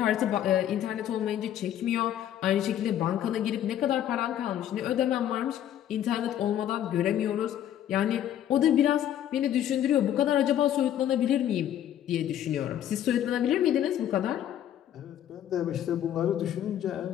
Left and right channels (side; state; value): right; quieter; 11.0 dB